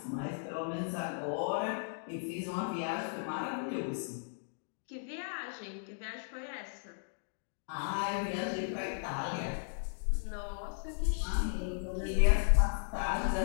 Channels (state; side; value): silent; right; digital silence